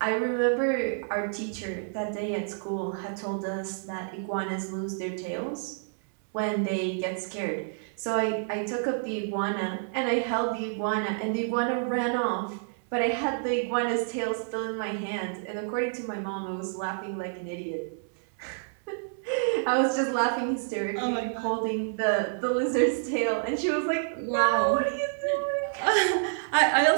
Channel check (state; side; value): silent; left; 59 dB below the other